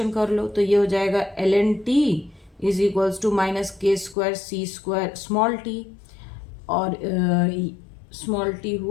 कर लो तो ये हो जाएगा ln t is equals to minus k square c square small t, और स्मॉल t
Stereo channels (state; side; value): drops out; right; at 4.2 s